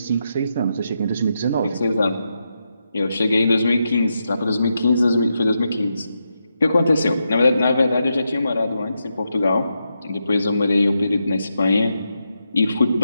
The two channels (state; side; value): inverted; both; correlation -0.85